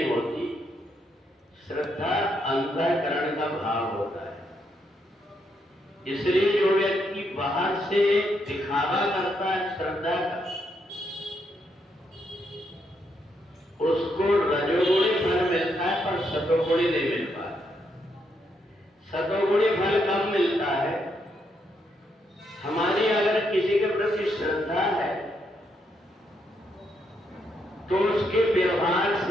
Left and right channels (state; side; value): normal; both; correlation 0.78